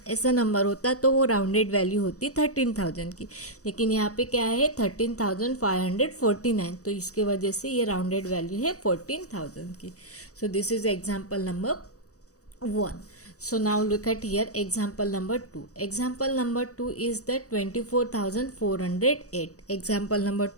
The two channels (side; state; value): right; late; 0.66 ms